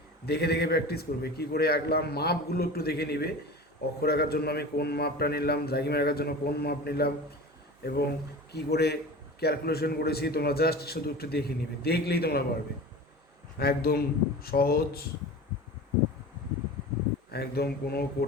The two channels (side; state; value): both; normal; correlation 0.34